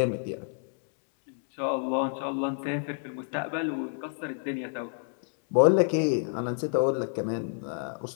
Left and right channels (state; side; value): silent; right; 59 dB below the other